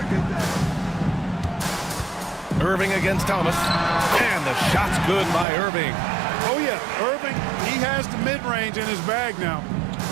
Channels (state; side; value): drops out; left; at 5.5 s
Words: Irving against Thomas. And the shot's good by Irving. Oh, yeah, Irving, he has the mid-range in his bag now.